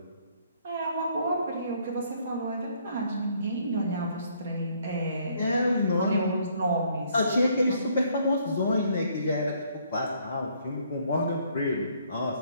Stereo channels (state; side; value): inverted; both; correlation -0.66